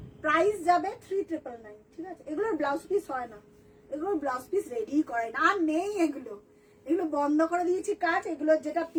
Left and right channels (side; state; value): both; identical; correlation 1.00